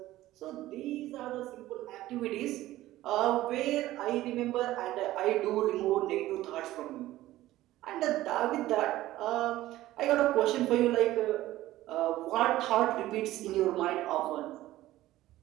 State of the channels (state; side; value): quieter; left; 15.6 dB